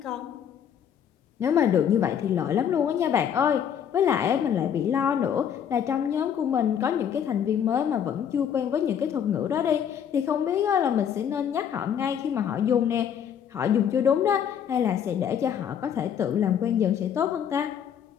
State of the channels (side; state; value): right; quieter; 8.6 dB